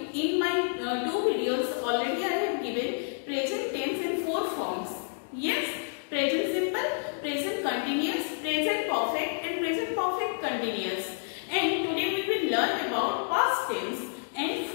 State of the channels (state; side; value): silent; right; 58 dB below the other